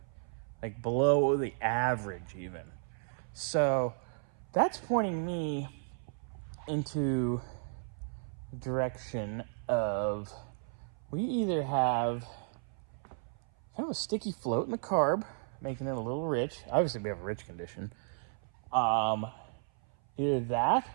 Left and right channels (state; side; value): silent; left; 55 dB below the other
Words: like below the average even. So that's pointing me into the direction of we either have kind of a sticky float in the carb, making it a little rich. Obviously, we have a rich condition. Either that